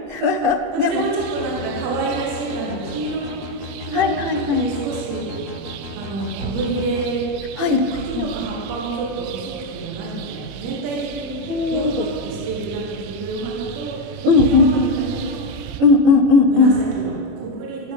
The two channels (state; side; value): late; left; 21 ms